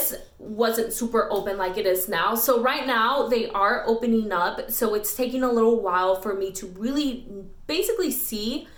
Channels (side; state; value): both; identical; correlation 1.00